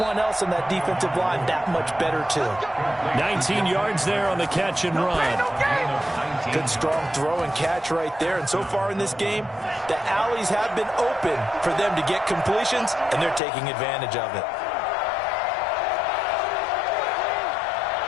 else in that defensive line that much better too. 19 yards there on the catch and run. Good strong throw and catch right there, and so far in this game, the alleys have been open for them to get completions, and they're taking advantage of it.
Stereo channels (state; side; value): drops out; right; at 13.4 s